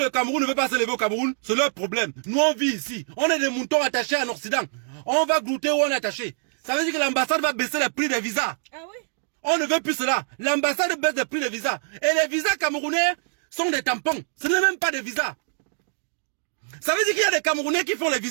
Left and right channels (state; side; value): silent; left; 62 dB below the other